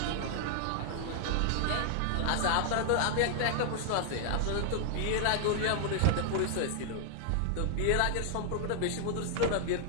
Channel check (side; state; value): both; different; correlation -0.01